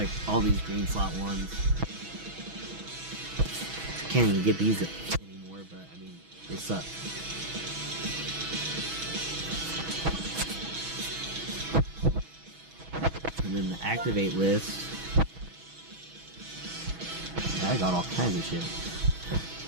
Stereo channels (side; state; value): left; late; 6.2 ms